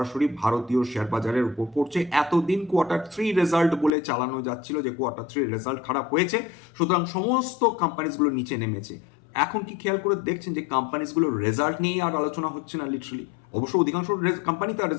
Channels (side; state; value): right; drops out; at 3.9 s